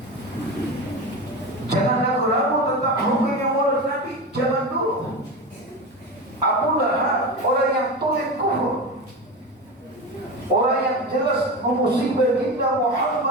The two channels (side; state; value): both; normal; correlation 0.23